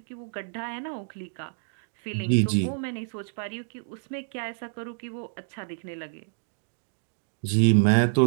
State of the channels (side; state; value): left; silent; digital silence